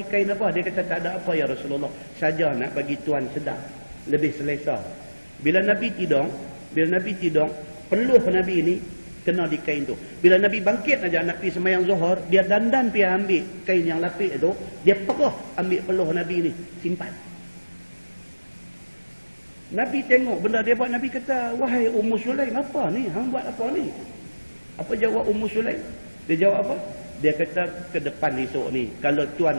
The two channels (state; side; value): inverted; both; correlation -1.00